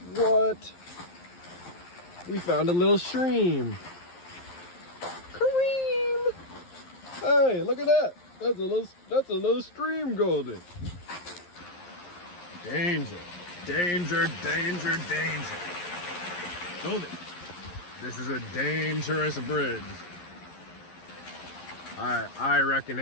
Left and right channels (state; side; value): late; right; 11 ms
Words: What? We found a little stream. Kareem! Hey, look at that. That's a little stream, Goldie. Danger, danger, danger, danger. Goldie, this is a dangerous bridge. I reckon